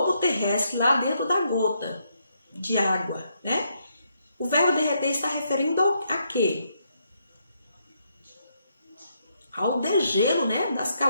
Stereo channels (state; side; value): inverted; both; correlation -0.76